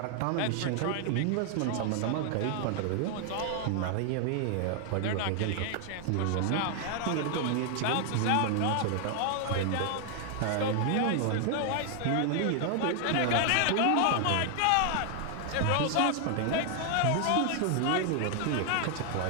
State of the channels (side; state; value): both; different; correlation 0.00